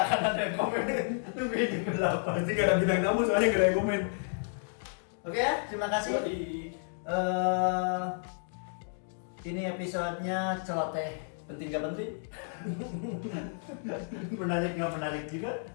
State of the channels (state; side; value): silent; right; digital silence